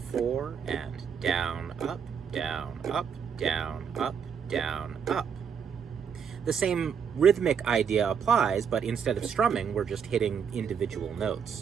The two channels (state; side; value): quieter; left; 7.1 dB